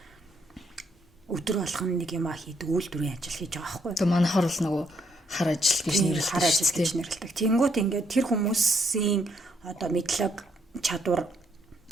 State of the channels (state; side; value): normal; both; correlation 0.73